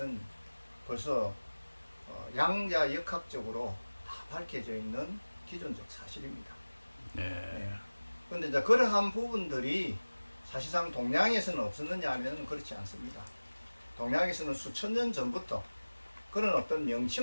벌써 양자역학적으로 다 밝혀져 있는 기존적 사실입니다. 네. 그런데 이제 그러한 부분들이 사실상 동양에서는 없었느냐 하면 그렇지 않습니다. 동양에서는 수천 년 전부터 그런 어떤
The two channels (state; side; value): inverted; both; correlation -1.00